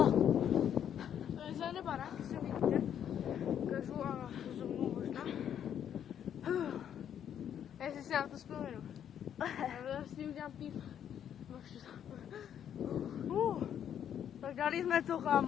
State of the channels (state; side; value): quieter; right; 9.4 dB